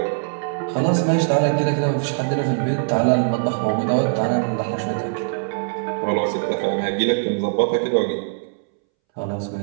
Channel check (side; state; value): left; silent; 64 dB below the other